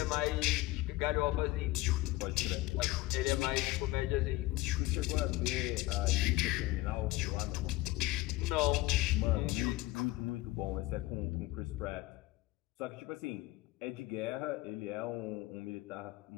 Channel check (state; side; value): quieter; right; 18.4 dB